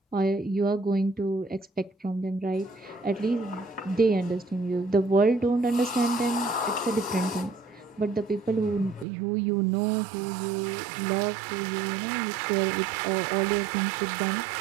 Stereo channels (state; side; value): drops out; left; at 9.1 s